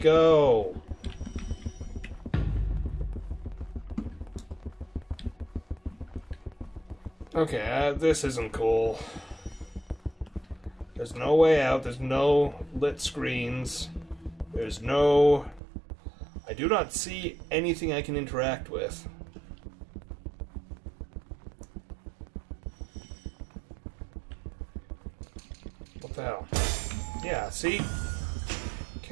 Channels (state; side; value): drops out; left; at 15.6 s